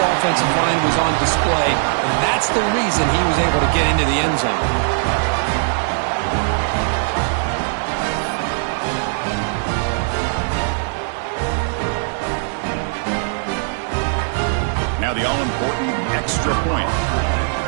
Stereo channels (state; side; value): silent; left; 66 dB below the other